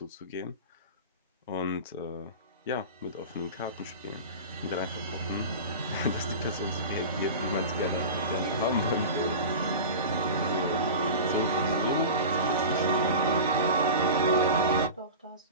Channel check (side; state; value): both; inverted; correlation -0.31